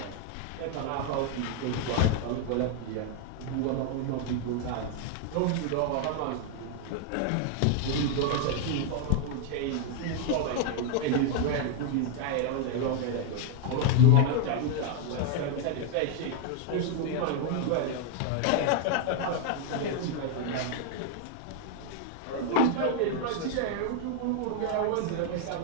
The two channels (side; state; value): both; different; correlation 0.00